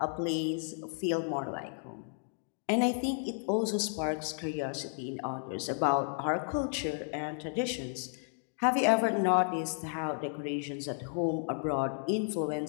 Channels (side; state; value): right; silent; 56 dB below the other